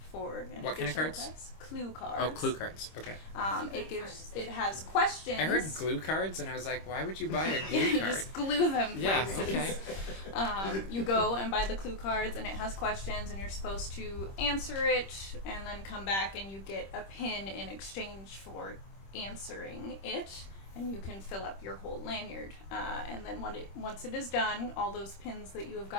for an What kind of additional cards? price. Clue cards. Oh, clue cards. Okay. It has questions. I heard glue cards, and I was like, why would you buy a glue You card? just glue them. Yeah. places. Okay. You go and buy the clue cards, and it has questions, and you're supposed to answer it, and then come back, and you get a pin in exchange for answering it, and you can fill up your whole lanyard. And then once it is done, all those pins that you have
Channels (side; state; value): right; late; 26 ms